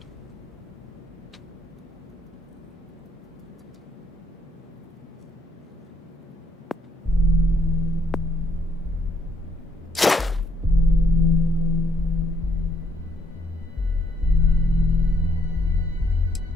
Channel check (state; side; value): normal; both; correlation 0.71